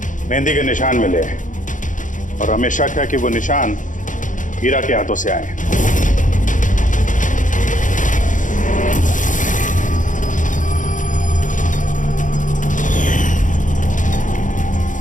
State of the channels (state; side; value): late; right; 0.37 ms